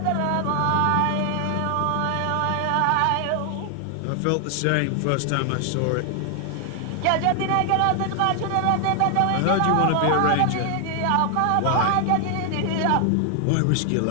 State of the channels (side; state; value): both; different; correlation 0.00